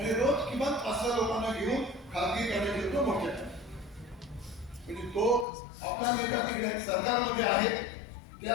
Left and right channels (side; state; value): right; drops out; at 5.5 s